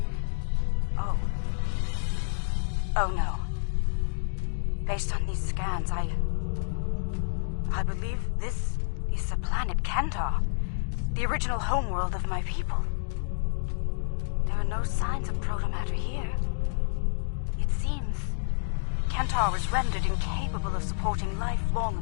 Oh no. Based on these scans, I believe this is the planet Kentar, the original homeworld of my people. There are no signs of protomatter here. It seems Kentar was rendered incapable of supporting life long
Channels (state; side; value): silent; right; digital silence